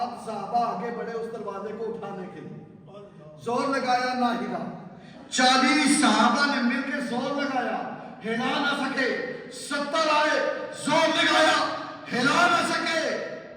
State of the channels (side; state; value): both; identical; correlation 1.00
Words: صحابہ آگے بڑھے اس دروازے کو اٹھانے کے لیے، زور لگایا نہ ہلا۔ 40 صحابہ نے مل کے زور لگایا، ہلا نہ سکے۔ 70 آئے، زور لگایا، ہلا نہ سکے۔